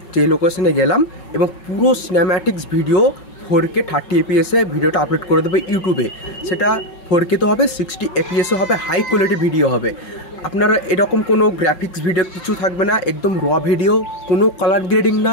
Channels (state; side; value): late; right; 5.4 ms